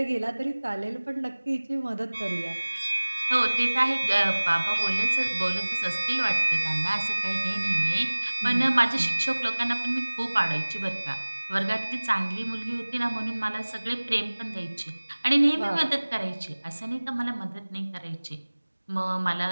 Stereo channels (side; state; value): both; inverted; correlation -1.00